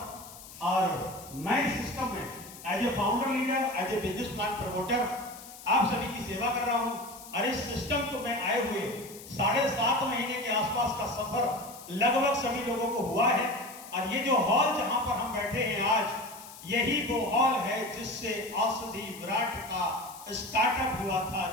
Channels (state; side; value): noise; left; hiss, 16 dB below the sound